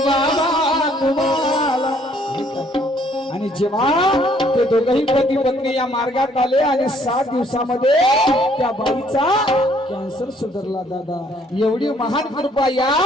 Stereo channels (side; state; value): both; normal; correlation 0.64